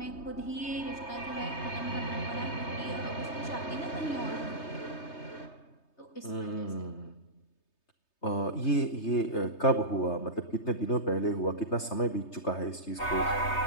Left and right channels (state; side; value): late; right; 3.3 ms